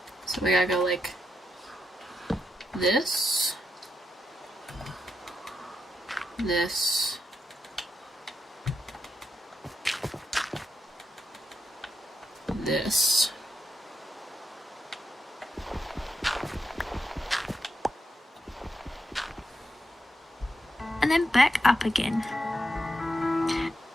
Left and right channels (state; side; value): normal; both; correlation 0.84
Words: So we gotta go like this, this, this. And then back up again.